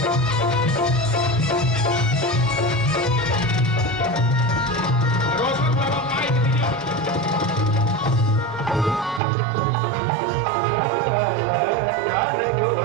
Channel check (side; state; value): left; drops out; at 9.2 s